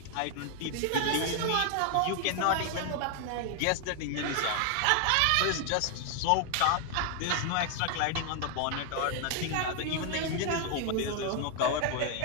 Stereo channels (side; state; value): both; different; correlation 0.00